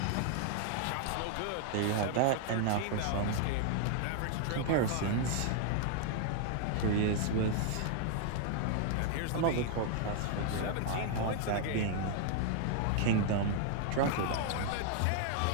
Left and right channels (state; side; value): different; both; correlation 0.00